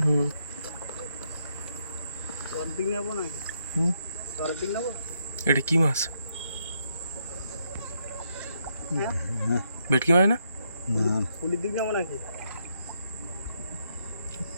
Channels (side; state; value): both; inverted; correlation -0.78